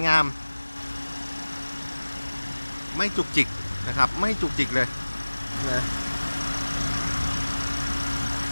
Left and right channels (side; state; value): both; inverted; correlation -1.00